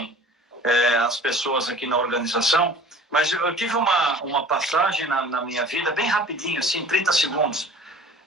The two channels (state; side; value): normal; both; correlation 0.46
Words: as pessoas aqui na organização, mas eu tive uma passagem na minha vida, bem rapidinho, assim, 30 segundos,